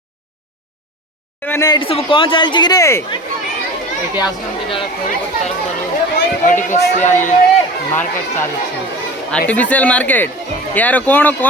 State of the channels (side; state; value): both; normal; correlation 0.36